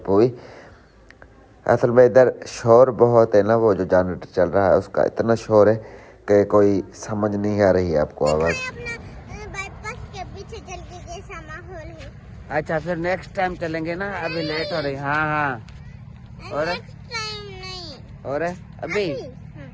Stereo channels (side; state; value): both; identical; correlation 1.00